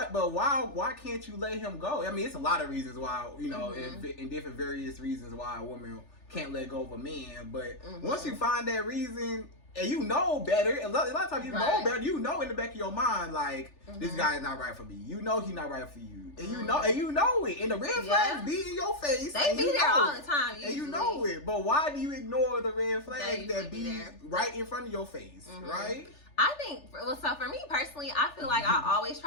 can't you let him go? I mean, it's a lot of reasons why, in different various reasons why a woman can't let go of a man. But once you find that reason, and you know better, a lot of times you know better, in the back of your mind, like, this guy is not right for me. You know he's not right for you. And you know it. And the red flags be in your face. They be there all the time, usually. And you know it. But why do you ignore the red flags that be right in front of your face, right? I think, well, so for me personally, I feel like I always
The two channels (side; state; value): right; late; 3.4 ms